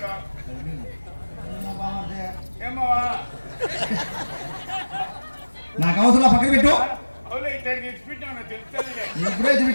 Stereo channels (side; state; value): both; inverted; correlation -1.00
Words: నాకు అవసరం పక్కన పెట్టు. ఇప్పుడే